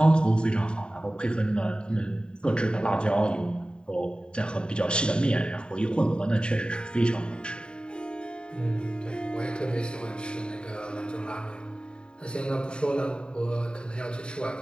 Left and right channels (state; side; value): late; right; 0.050 ms